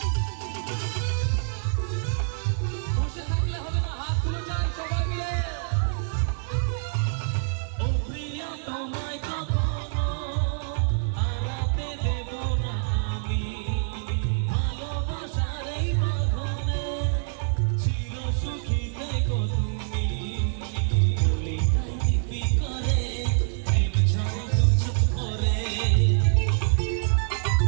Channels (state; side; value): silent; left; digital silence